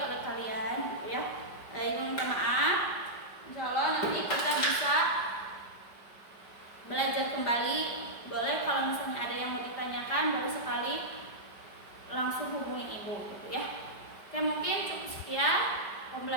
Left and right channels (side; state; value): right; late; 4.9 ms